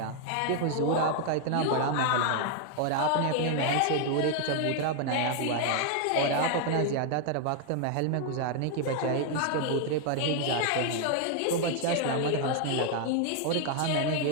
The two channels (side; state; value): both; different; correlation 0.00